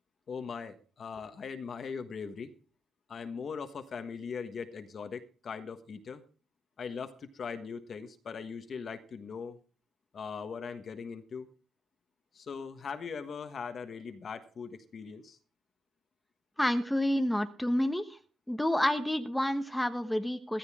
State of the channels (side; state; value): both; normal; correlation 0.95